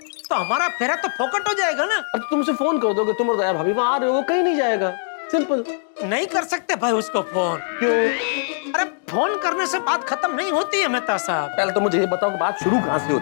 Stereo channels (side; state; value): right; silent; digital silence